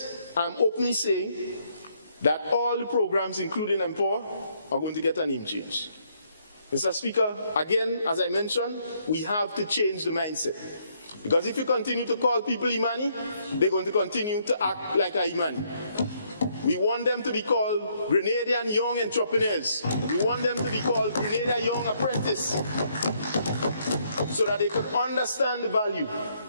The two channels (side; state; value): both; inverted; correlation -0.70